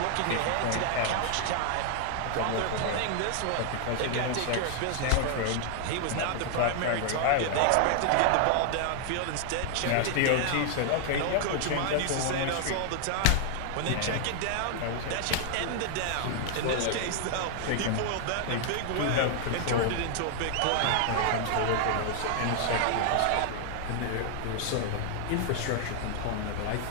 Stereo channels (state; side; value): different; both; correlation 0.00